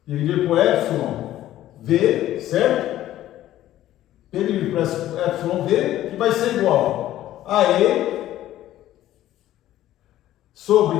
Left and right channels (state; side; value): quieter; right; 13.6 dB